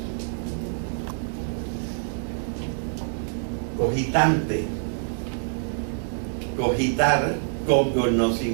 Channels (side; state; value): left; silent; digital silence